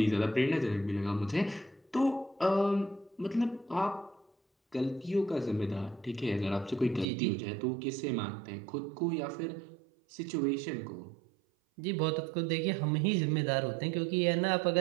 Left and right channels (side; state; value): left; drops out; at 7.1 s